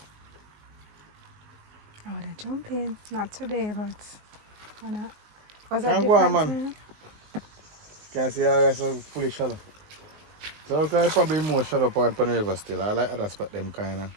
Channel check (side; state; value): left; late; 19 ms